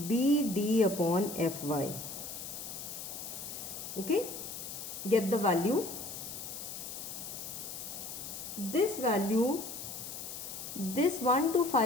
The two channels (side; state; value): left; noise; hiss, 8 dB below the sound